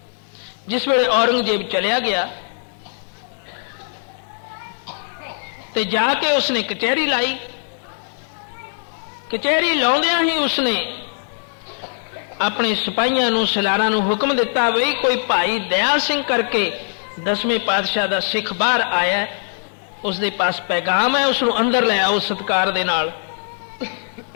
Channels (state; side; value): silent; right; 65 dB below the other